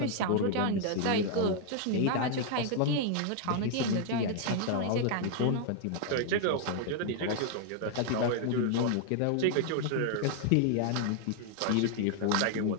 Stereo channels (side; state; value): both; different; correlation 0.00